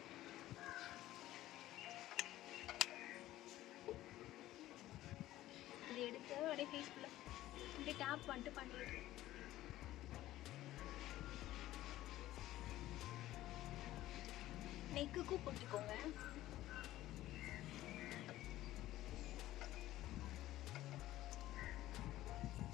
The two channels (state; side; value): quieter; right; 15.0 dB